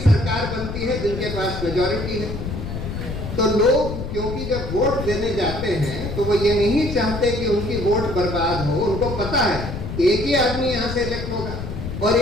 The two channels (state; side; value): noise; left; rumble, 6 dB below the sound